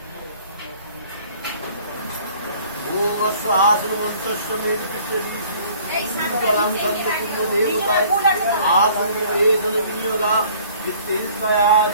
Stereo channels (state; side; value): inverted; both; correlation -0.54